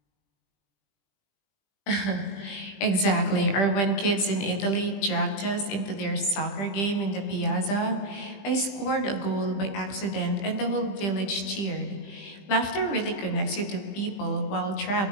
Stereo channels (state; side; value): late; right; 20 ms